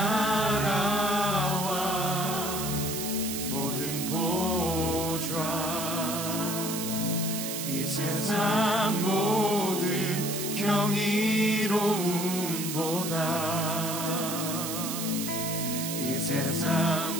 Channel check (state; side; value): noise; right; hiss, 4 dB below the sound